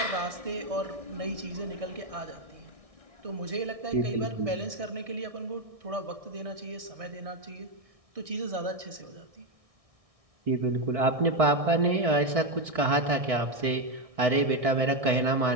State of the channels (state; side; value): late; left; 1.6 ms